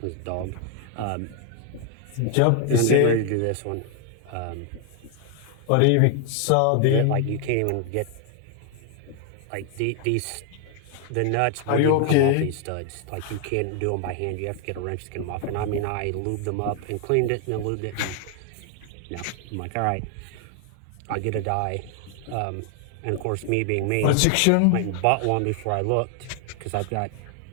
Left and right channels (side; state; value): both; different; correlation 0.00